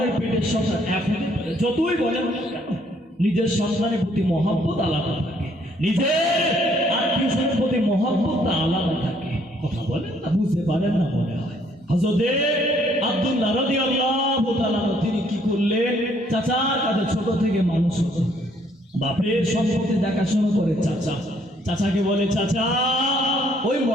পেটের সন্তান এক হতে পারে? যতই বলেন নিজের সন্তানের প্রতি মহব্বত আলাদা থাকে, নিজের আত্মীয়স্বজনের প্রতি মহব্বত আলাদা থাকে। কথা বলেন না, বুঝতে পারেন না মনে হয়। হযরত আব্দুল্লাহ রাদিয়াল্লাহু তাআলা তিনি কি করলেন? চাচার কাছে ছোট থেকে মানুষ হতো, বাপের সম্পত্তি দেখাশোনা করে চাচা। চাচাকে বলে, চাচা ওই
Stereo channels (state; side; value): normal; both; correlation 0.66